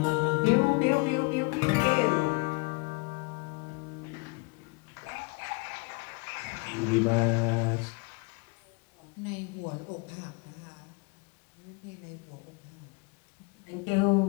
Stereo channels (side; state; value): right; quieter; 29.3 dB